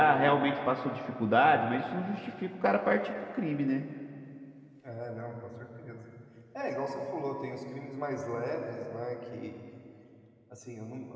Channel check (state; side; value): identical; both; correlation 1.00